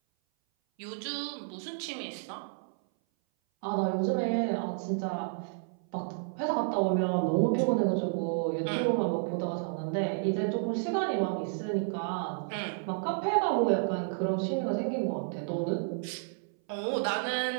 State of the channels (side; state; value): left; silent; 57 dB below the other